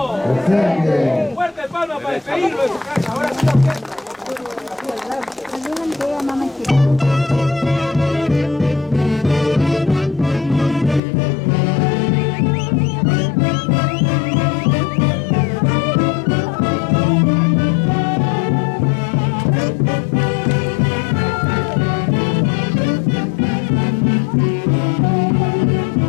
Fuerte palma para despedirlo de su casa. Ahora sí la orquesta.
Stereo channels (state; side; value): drops out; right; at 11.0 s